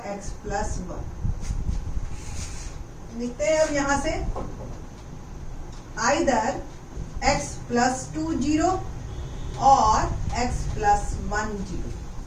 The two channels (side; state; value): both; identical; correlation 1.00